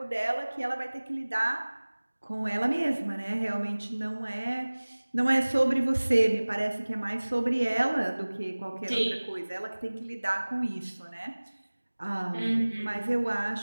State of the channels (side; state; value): both; inverted; correlation -1.00